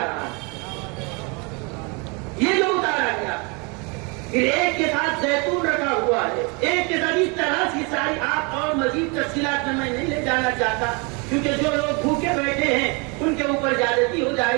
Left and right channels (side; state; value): left; quieter; 31.0 dB